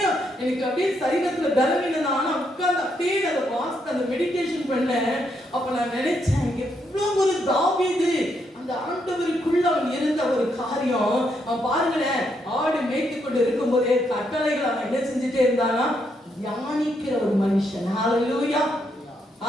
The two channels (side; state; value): both; normal; correlation 0.77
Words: எனக்கு அப்படியே சரீரத்துல பலவீனம், ஆனா உட்கார்ந்து அப்படியே அதை வாசித்து அந்த மெடிடேஷன் பண்ணேன். அப்ப நான் நினைச்சேன், எவ்வளவு ஒரு தாவீது அந்த ஆண்டவருக்குள்ள அவன் இருந்த ஒரு காரியம். அவன் பாருங்களேன், ஆடு மேய்த்து கொண்டு இருக்கும் போதே கட்டளைகள் அவன் என்ன செஞ்சுட்டே இருந்தானா? தியானிக்கிற ஒரு மனுஷன். ஹalleluya,